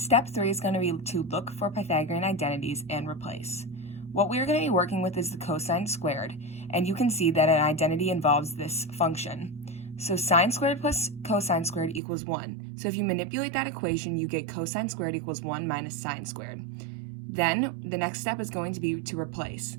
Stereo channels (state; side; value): drops out; left; at 12.0 s